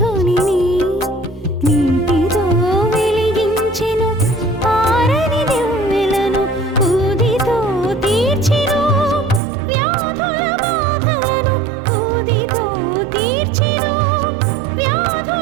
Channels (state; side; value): drops out; left; at 9.4 s